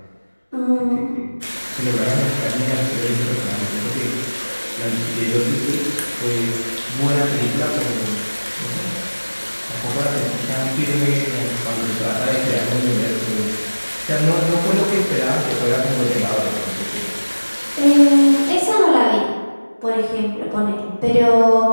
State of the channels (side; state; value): both; inverted; correlation -1.00